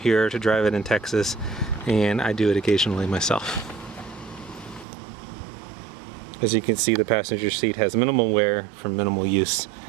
to drive it in Texas, and I do it occasionally myself. As you can see, the passenger seat has minimal wear from minimal use,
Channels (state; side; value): drops out; left; at 4.9 s